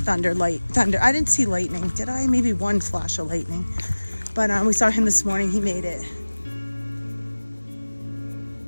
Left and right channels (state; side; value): inverted; both; correlation -1.00